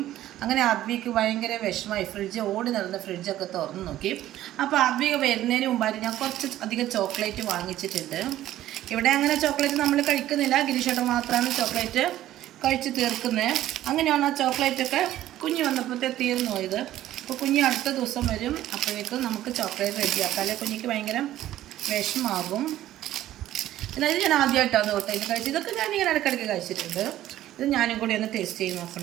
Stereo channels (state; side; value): quieter; left; 13.6 dB